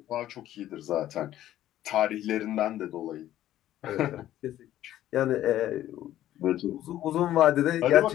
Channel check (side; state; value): right; quieter; 13.0 dB